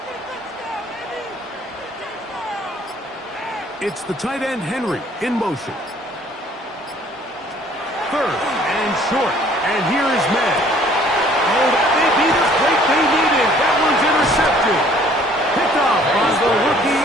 It's the tight end, Henry, in motion. 3rd and short, and here is May. Oh, that may be the break they needed. That one's intercepted. Picked off by the rookie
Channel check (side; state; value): both; normal; correlation 0.57